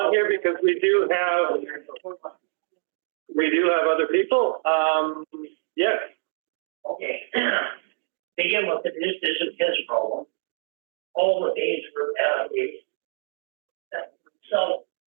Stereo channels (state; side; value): silent; left; digital silence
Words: here because we do have other people. Yes. Okay. Begin with this isn't his problem. All the days for that so